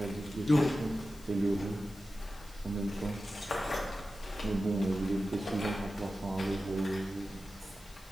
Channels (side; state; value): left; noise; hiss, 23 dB below the sound